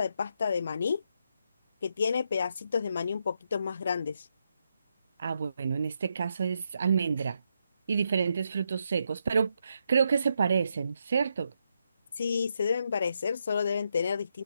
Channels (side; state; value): both; inverted; correlation -0.80